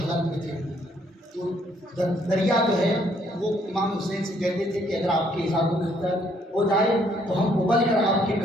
میں تھے، تو دریا جو ہے وہ امام حسین سے کہتے تھے کہ اگر آپ کی اجازت ہو جائے تو ہم ابل کر آپ کے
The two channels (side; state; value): both; normal; correlation 0.67